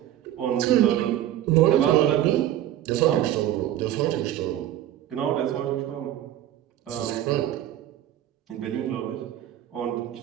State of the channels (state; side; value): quieter; left; 12.4 dB